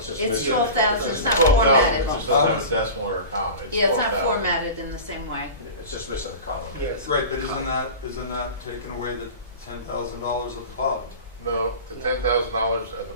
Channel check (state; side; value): inverted; both; correlation -0.34